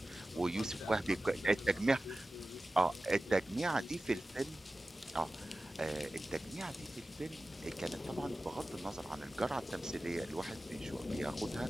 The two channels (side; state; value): both; normal; correlation 0.96